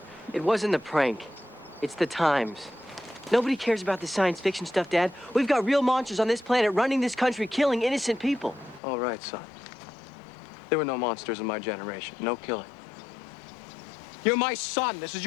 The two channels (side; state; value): right; drops out; at 8.8 s